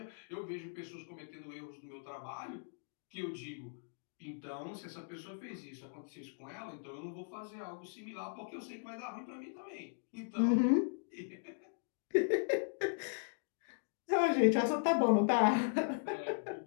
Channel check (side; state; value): right; silent; digital silence